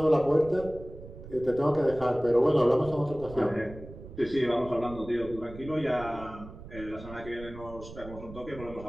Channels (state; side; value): noise; right; rumble, 15 dB below the sound